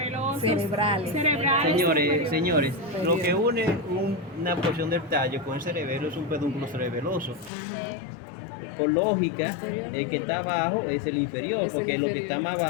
Cerebrales. Cerebrales. Señores, lo que une una porción del tallo con el cerebelo es un pedúnculo cerebeloso. Por lógica, el que está abajo es el inferior, Es el porque lo que inferior. está más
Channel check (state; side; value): drops out; right; at 7.5 s